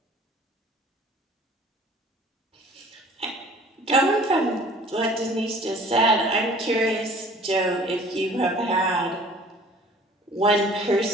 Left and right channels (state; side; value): normal; both; correlation 0.50